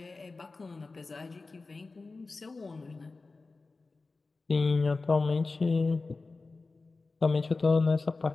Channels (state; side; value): quieter; right; 3.7 dB